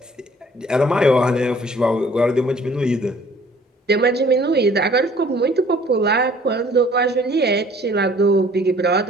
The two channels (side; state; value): both; normal; correlation 0.55